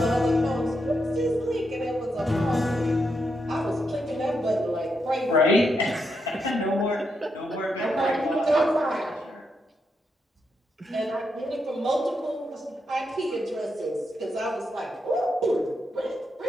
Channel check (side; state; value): both; normal; correlation 0.82